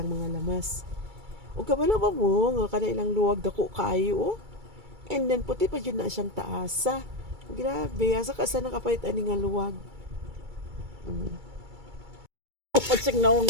mga lamas. O kabalo ba mo nga kada ilang luwag dako kayo oh. And then puti pa jud na siyang taasa. Grabe, asa ka sa nakapait ani nga luwag. Pagsig naong.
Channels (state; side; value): late; left; 2.3 ms